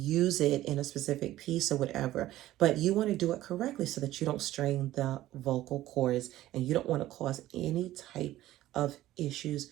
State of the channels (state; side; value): quieter; left; 14.9 dB